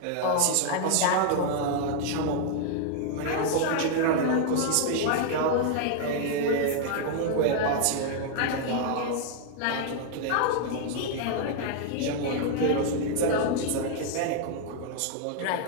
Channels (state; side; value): different; both; correlation 0.00